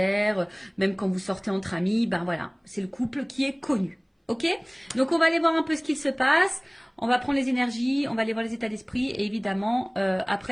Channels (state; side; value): identical; both; correlation 1.00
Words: même quand vous sortez entre amis, ben voilà, c'est le couple qui est connu. Ok, donc on va aller voir un peu ce qu'il se passe, on va prendre les énergies, on va aller voir les états d'esprit et évidemment